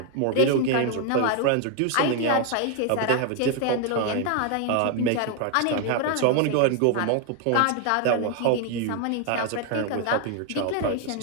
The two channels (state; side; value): different; both; correlation 0.00